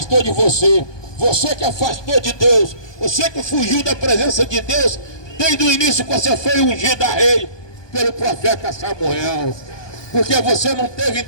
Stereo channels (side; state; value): right; late; 1.2 ms